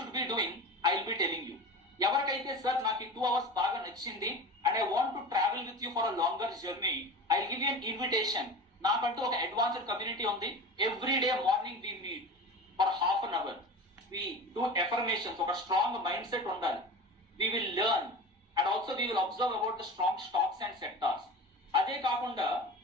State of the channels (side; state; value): both; normal; correlation 0.32